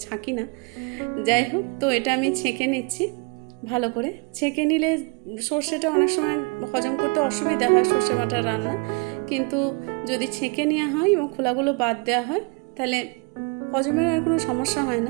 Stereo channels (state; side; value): quieter; left; 30.7 dB